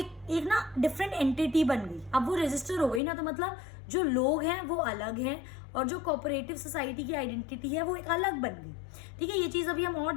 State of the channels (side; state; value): right; drops out; at 3.0 s